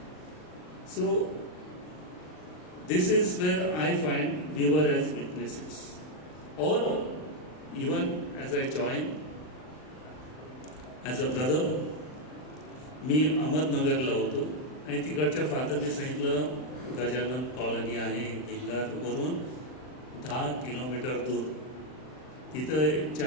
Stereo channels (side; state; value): right; late; 39 ms